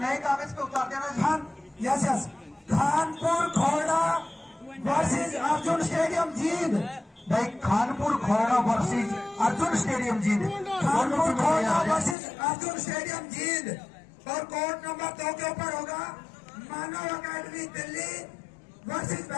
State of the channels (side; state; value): right; drops out; at 12.2 s